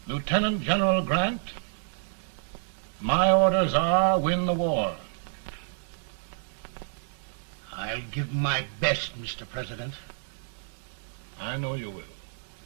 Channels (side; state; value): left; silent; digital silence